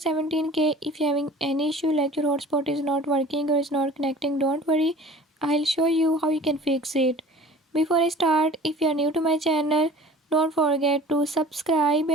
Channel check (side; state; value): both; normal; correlation 0.45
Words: if you're having any issue like your hotspot is not working or is not connecting, don't worry, I'll show you how you can fix it. Before I start, if you are new to my channel, don't forget to subscribe